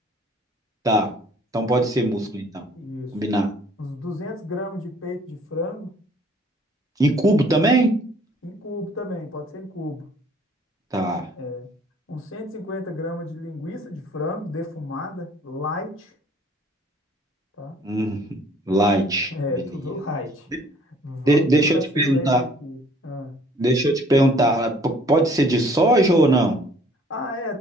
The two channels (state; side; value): normal; both; correlation 0.57